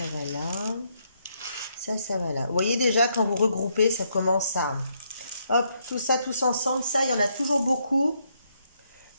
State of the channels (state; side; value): inverted; both; correlation -0.75